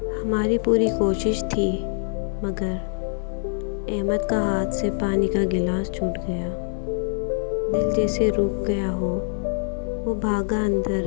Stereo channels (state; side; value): silent; right; 62 dB below the other